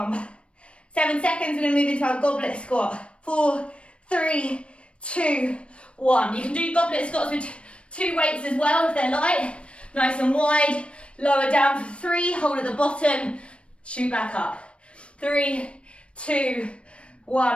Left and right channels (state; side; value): late; right; 0.060 ms